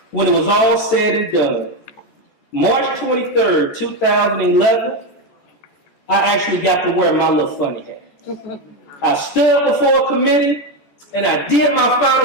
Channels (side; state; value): right; late; 14 ms